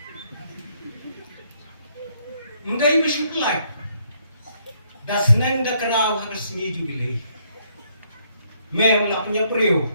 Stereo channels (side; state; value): both; inverted; correlation -0.70